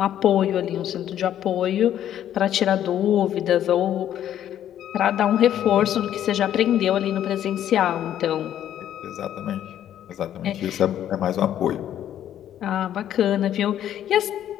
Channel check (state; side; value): quieter; right; 11.0 dB